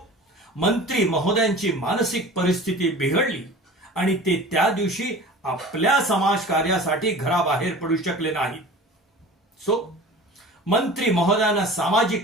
मंत्री महोदयांची मानसिक परिस्थिती बिघडली, आणि ते त्या दिवशी आपल्या समाजकार्यासाठी घराबाहेर पडू शकले नाहीत. मंत्री महोदयांना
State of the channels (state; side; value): normal; both; correlation 0.40